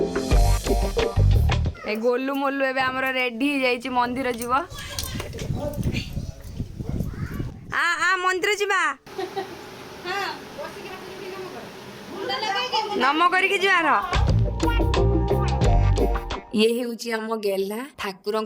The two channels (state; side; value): identical; both; correlation 1.00